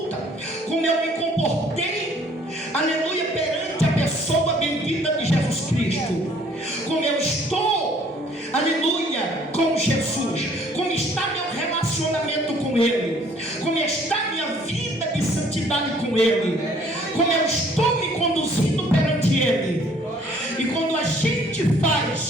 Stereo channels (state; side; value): normal; both; correlation 0.59